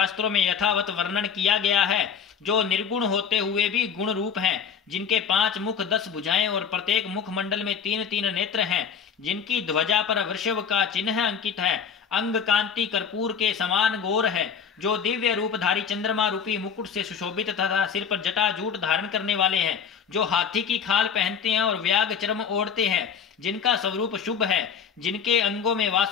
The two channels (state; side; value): quieter; right; 6.9 dB